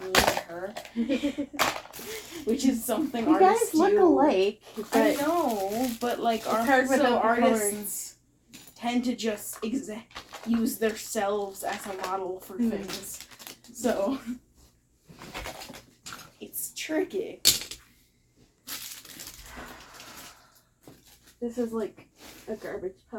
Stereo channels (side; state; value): both; identical; correlation 1.00